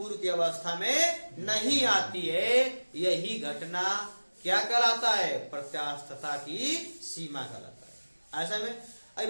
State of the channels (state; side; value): inverted; both; correlation -1.00